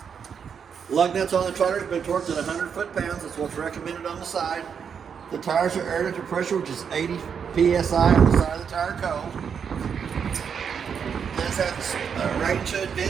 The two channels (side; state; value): left; quieter; 7.0 dB